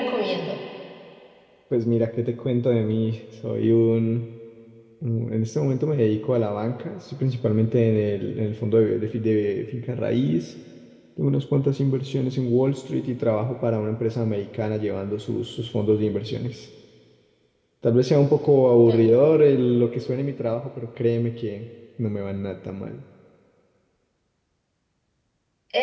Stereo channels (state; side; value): identical; both; correlation 1.00